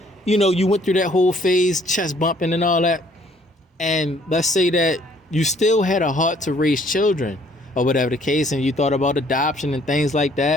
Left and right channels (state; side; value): normal; both; correlation 0.61